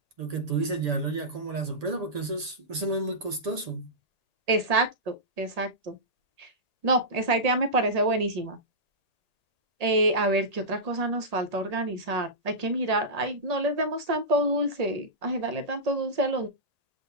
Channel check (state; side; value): late; left; 1.8 ms